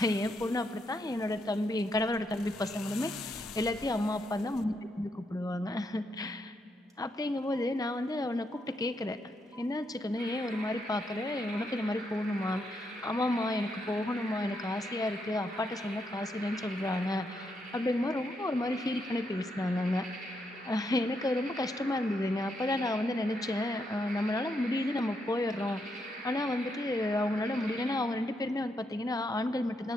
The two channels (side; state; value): both; normal; correlation 0.79